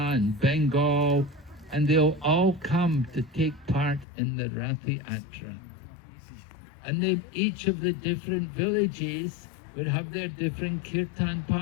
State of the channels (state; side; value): drops out; right; at 4.0 s